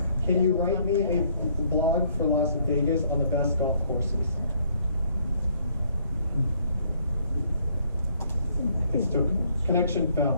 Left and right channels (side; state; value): both; inverted; correlation -0.65